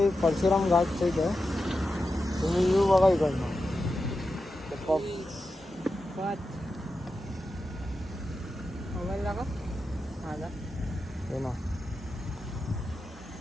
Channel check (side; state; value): both; normal; correlation 0.90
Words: परशुराम घाटच्या इथे आहे. तुम्ही व्ह्यू बघा इकडनं. मोबाईल दाखव माझा. हे ना